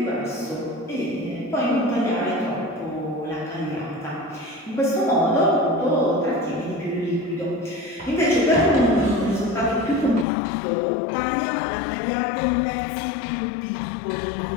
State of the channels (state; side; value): drops out; right; at 10.2 s